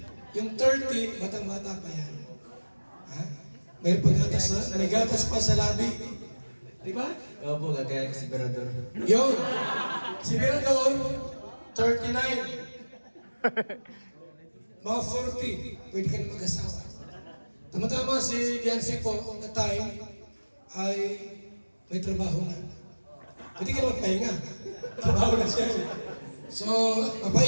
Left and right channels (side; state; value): both; inverted; correlation -1.00